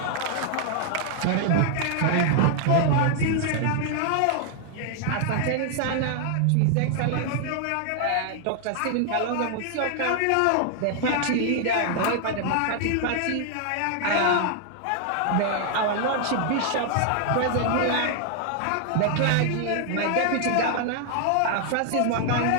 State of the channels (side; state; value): both; different; correlation 0.00